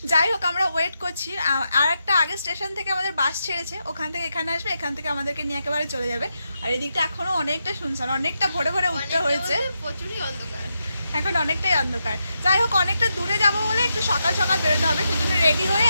যাই হোক, আমরা ওয়েট করছি। আর একটা আগের স্টেশন থেকে আমাদের বাস ছেড়েছে, ওখান থেকে এখানে আসবে, এখান থেকে আমাদেরকে নিয়ে একেবারে চলে যাবে। আর এদিকটা এখনো অনেকটা শুনশান, অনেকটা ভোরে ভোরে উঠতে হয়েছে, প্রচুরই অন্ধকার, এখন অনেকটাই অন্ধকার। যাই হোক, অনেকটা দূরে যাবো বলে একটু সকাল সকাল বেরোতে হবে, সেজন্য রেডি হয়ে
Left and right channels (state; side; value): inverted; both; correlation -0.85